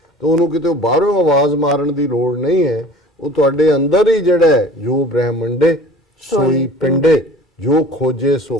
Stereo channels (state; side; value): normal; both; correlation 0.45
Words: ਤਾਂ ਉਹਨੂੰ ਕਿਤੇ ਬਾਹਰੋਂ ਆਵਾਜ਼ ਮਾਰਨ ਦੀ ਲੋੜ ਨਹੀਂ ਹੈ। ਉਹ ਤੁਹਾਡੇ ਅੰਦਰ ਹੀ ਜਿਹੜਾ ਹੈ, ਜੋ ਬ੍ਰਹਿਮੰਡੇ ਸੋਈ ਪਿੰਡੇ, ਜੋ ਖੋਜੇ ਸੋ